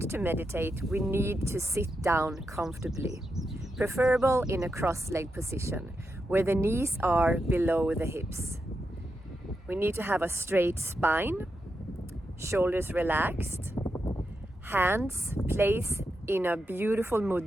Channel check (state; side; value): normal; both; correlation 0.86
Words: to meditate, we need to sit down comfortably, preferable in a cross-legged position, where the knees are below the hips. We need to have a straight spine, shoulders relaxed, hands placed in a beautiful